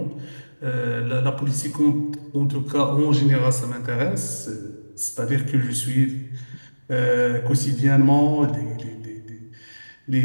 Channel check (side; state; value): both; inverted; correlation -1.00